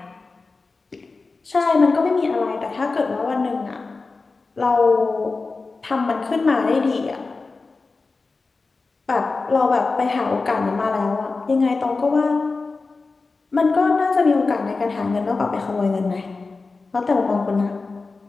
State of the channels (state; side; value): quieter; right; 3.9 dB